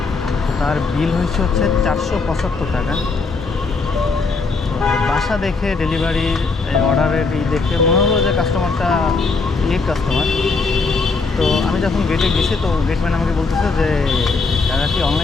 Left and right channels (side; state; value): right; quieter; 4.2 dB